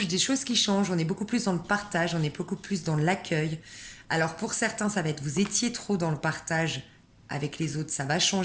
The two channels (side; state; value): both; identical; correlation 1.00